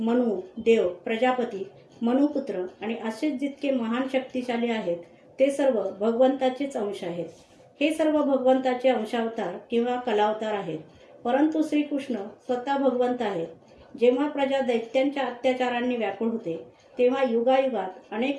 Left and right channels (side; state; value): both; identical; correlation 1.00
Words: देव, प्रजापती, मनुपुत्र आणि असेच जितके महान शक्तिशाली आहेत ते सर्व भगवंताचेच अंश आहेत. हे सर्व भगवंताचे अंशावतार किंवा कलावतार आहेत. परंतु श्रीकृष्ण स्वतः भगवंत आहेत. जेव्हा प्रजा दैत्यांच्या अत्याचारांनी व्याकुळ होते तेव्हा युगायुगात